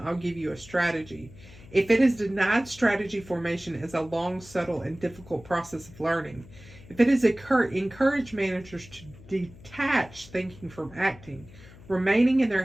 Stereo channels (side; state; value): left; noise; hum, 20 dB below the sound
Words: give you a strategy, if it has denied strategy formation as a long, subtle, and difficult process of learning, if it has encouraged managers to detach thinking from acting, remaining in their